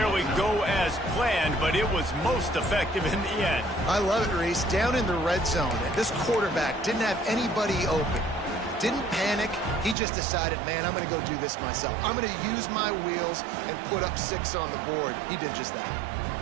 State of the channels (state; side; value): drops out; left; at 10.0 s